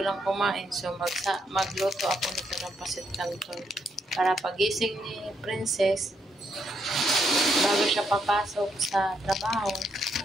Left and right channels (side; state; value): both; normal; correlation 0.76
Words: lang kumain. So, magluto ako nito ng pancit canton. Para pagising ni Princess, bago siya papasok sa trabaho,